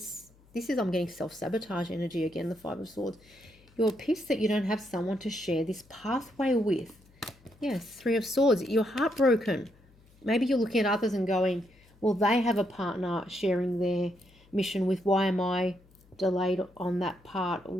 This is, I'm getting self-sabotage energy again, the Five of Swords. You're pissed that you don't have someone to share this pathway with. Yes, Three of Swords. You're heartbroken. Maybe you're looking at others and going, well, they have a partner sharing their mission with. Why am I delayed on that part?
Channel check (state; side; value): noise; left; hum, 29 dB below the sound